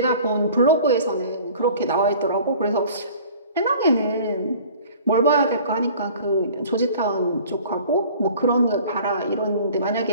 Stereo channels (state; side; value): inverted; both; correlation -0.48